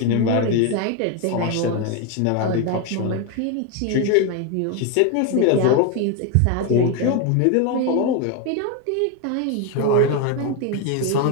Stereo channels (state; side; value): different; both; correlation 0.02